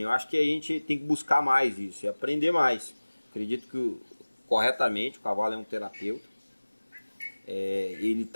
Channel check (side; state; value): both; inverted; correlation -1.00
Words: acho que a gente tem que buscar mais isso e aprender mais. Acredito que, corretamente, o cavalo é um terapeuta. Ele